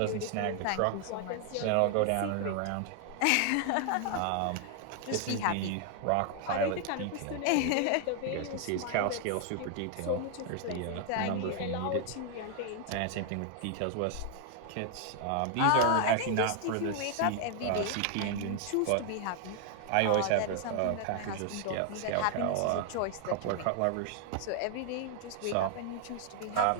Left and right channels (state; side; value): different; both; correlation 0.00